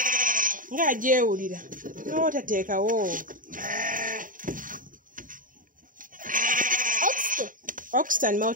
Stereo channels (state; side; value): late; left; 0.39 ms